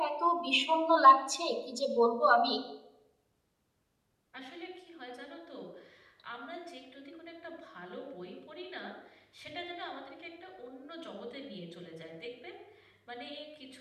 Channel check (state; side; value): identical; both; correlation 1.00